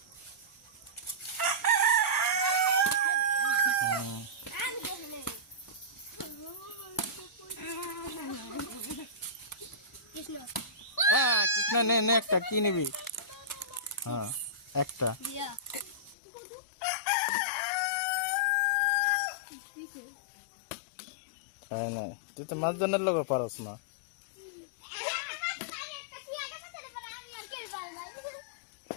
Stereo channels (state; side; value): drops out; right; at 16.2 s